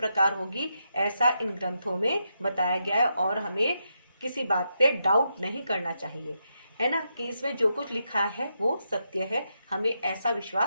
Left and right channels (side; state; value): both; inverted; correlation -0.83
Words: होगी ऐसा इन ग्रंथों में बताया गया है, और हमें किसी बात पे डाउट नहीं करना चाहिए, है ना, कि इसमें जो कुछ लिखा है वो सत्य है। हमें ऐसा